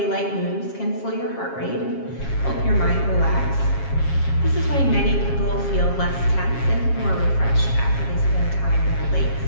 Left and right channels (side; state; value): right; late; 7.3 ms